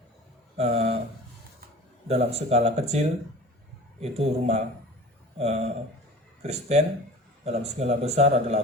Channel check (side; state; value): both; normal; correlation 0.40